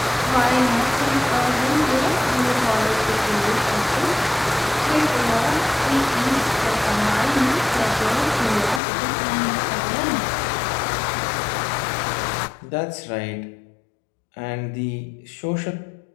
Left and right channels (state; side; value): drops out; right; at 8.8 s